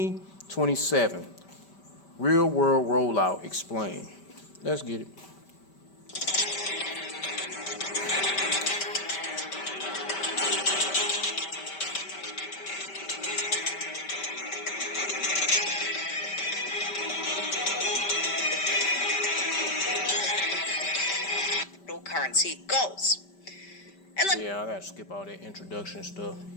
Real world rollout explained. Let's get it. Currency goals. And let I gotta skip all that introduction stuff.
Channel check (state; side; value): late; right; 5.1 ms